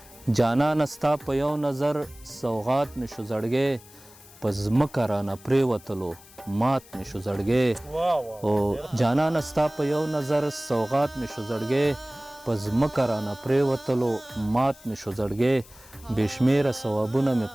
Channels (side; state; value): left; noise; hiss, 22 dB below the sound